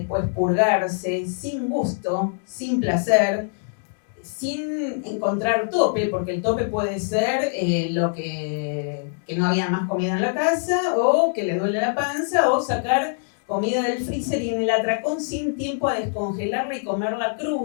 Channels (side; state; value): right; silent; digital silence